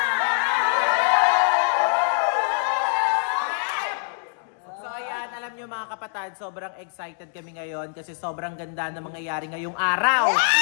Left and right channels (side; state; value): right; silent; digital silence